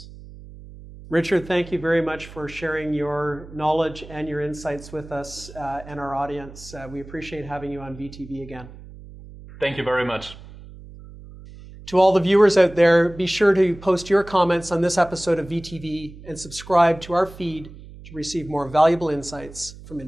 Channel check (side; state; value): right; noise; hum, 17 dB below the sound